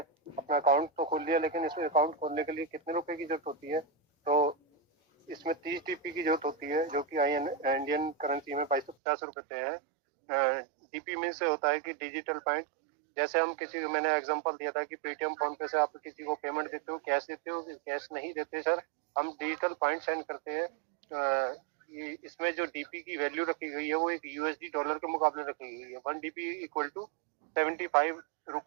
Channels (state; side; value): drops out; left; at 9.0 s